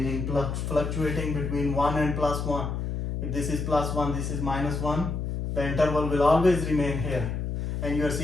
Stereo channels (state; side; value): noise; left; hum, 3 dB below the sound